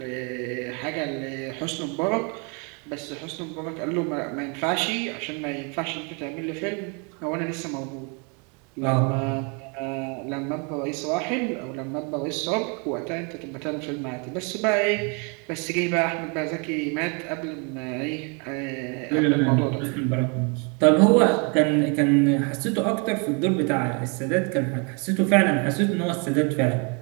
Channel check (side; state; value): left; quieter; 34.5 dB